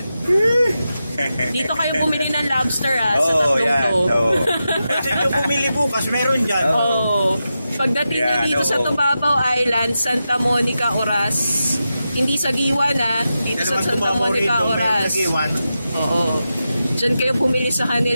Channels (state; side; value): inverted; both; correlation -0.90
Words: Dito kayo bumili ng lobster sa tatlong to. Kasi yung bumili bukas, meron dyan. Pagdating nyo dito sa Tubabaw Island, Santa Monica, Oras. Hindi sa Giwan dito sa Santa Monica, Oras. Oo. Diyan kayo bumili sa